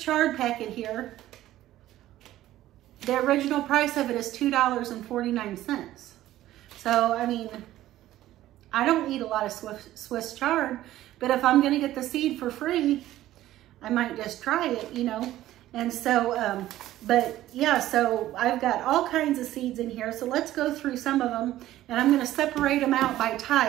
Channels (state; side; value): quieter; left; 14.3 dB